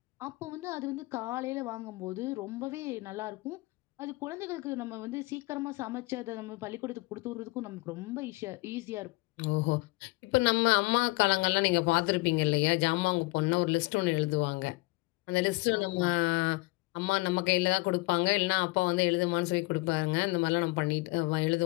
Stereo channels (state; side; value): quieter; right; 23.8 dB